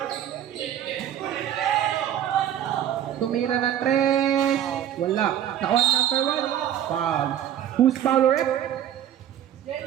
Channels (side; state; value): left; quieter; 10.7 dB